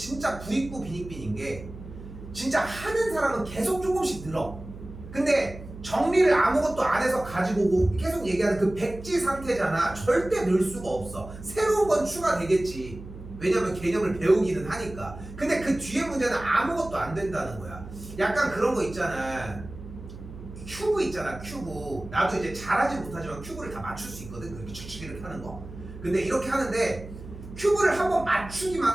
부익부 빈익빈인 게, 진짜 하는 사람은 계속 조금씩 늘어. 근데 정리를 아무것도 안 해서 가지고 오고 계속 얘기하는 그 백지 상태잖아. 절대 늘 수가 없어. 새로운 건 추가되겠지. 왜냐면 개념을 배우기는 하니까. 근데 그 뒤에 문제는 아무것도 안 된다는 거야. 약간 그런 거 있잖아. 큐브 있잖아, 큐브. 나도 이제 잘하지 못하지만 큐브를 다 맞출 수 있거든. 그렇게 칙칙 이렇게 하는 거. 근데 이렇게 하는데 큐브를 한번 맞추기만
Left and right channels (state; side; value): noise; right; hum, 14 dB below the sound